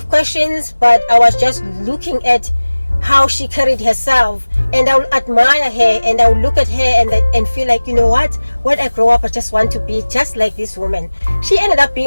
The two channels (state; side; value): inverted; both; correlation -1.00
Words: questions, but I was just looking at how she carried herself, and I would admire her, and I would look at her and feel like, you know what, when I grow up I just want to be just like this woman. She ended up